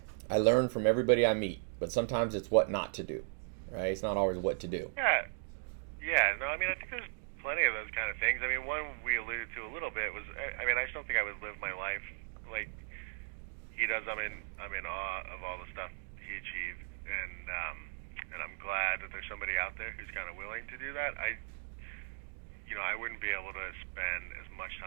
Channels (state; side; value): silent; left; digital silence